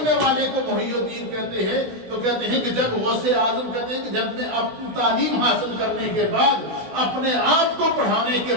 والے کو محی الدین کہتے ہیں۔ تو کہتے ہیں کہ جب غوث اعظم کہتے ہیں کہ جب میں اپنی تعلیم حاصل کرنے کے بعد، اپنے آپ کو پڑھانے کے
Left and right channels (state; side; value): late; left; 16 ms